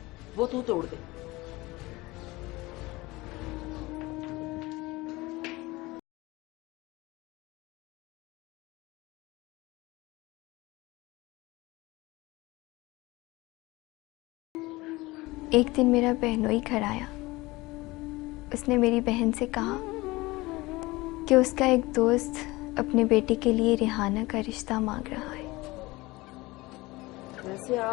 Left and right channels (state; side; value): quieter; right; 21.1 dB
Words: वो तू तोड़ दे। एक दिन मेरा बहनोई घर आया। उसने मेरी बहन से कहा कि उसका एक दोस्त अपने बेटे के लिए रेहाना का रिश्ता मांग रहा है। वैसे